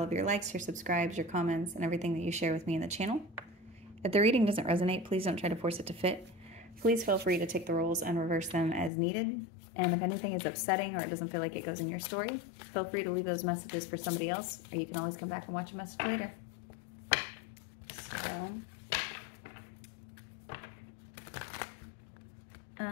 of your likes, your subscribes, your comments, and everything that you share with me in the channel. If the reading doesn't resonate, please don't try to force it to fit. Please feel free to take the roles and reverse them as needed. And if anything is upsetting or it doesn't feel like it goes in your story, feel free to leave those messages for somebody else, or you can always come back and watch a message later. So...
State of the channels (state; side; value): drops out; right; at 8.9 s